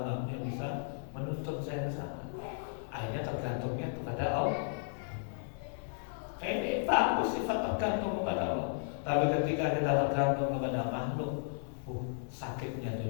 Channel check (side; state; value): right; silent; digital silence